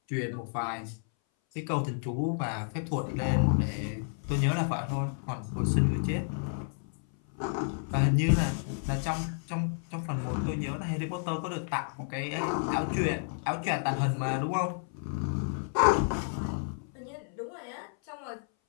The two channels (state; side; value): silent; right; 57 dB below the other